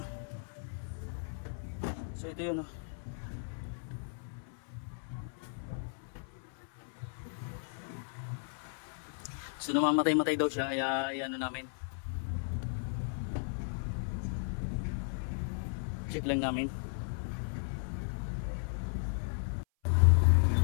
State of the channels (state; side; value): silent; right; 54 dB below the other